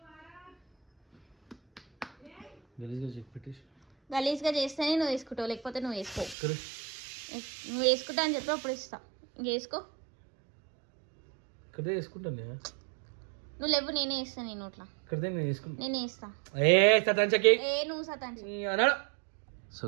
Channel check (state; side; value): drops out; left; at 6.4 s